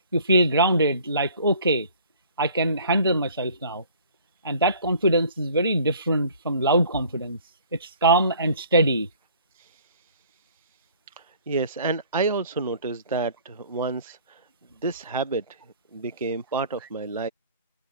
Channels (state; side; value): inverted; both; correlation -0.52